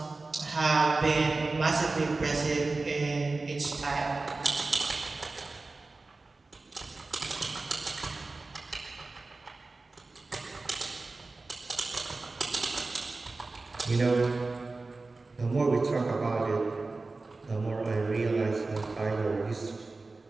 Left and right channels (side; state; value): left; quieter; 3.5 dB